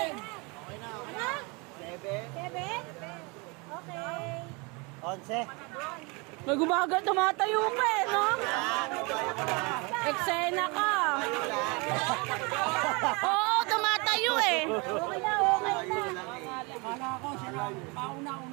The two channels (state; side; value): quieter; left; 29.0 dB